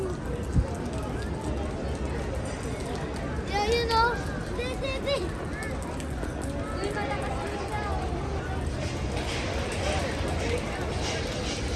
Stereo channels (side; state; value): both; identical; correlation 1.00